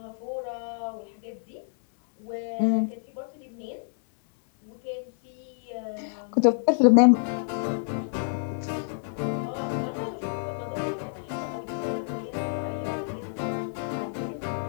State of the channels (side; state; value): right; silent; 59 dB below the other